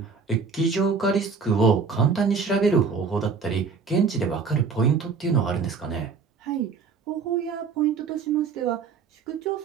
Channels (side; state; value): left; quieter; 5.4 dB